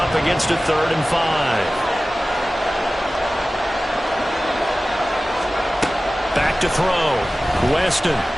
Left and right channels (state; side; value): normal; both; correlation 0.96